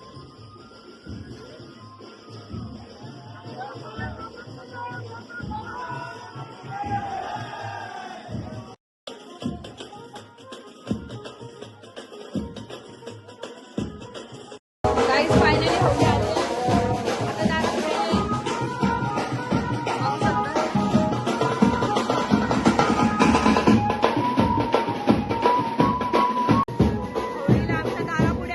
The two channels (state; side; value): identical; both; correlation 1.00